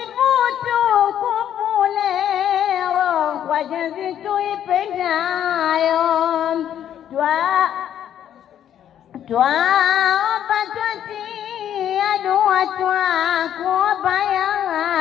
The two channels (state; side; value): quieter; right; 10.3 dB